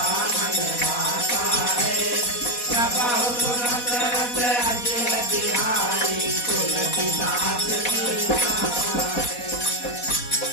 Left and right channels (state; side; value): late; right; 4.1 ms